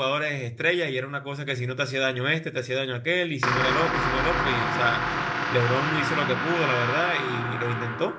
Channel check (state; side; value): identical; both; correlation 1.00